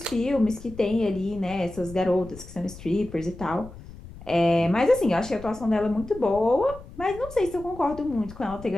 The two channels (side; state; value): left; noise; rumble, 16 dB below the sound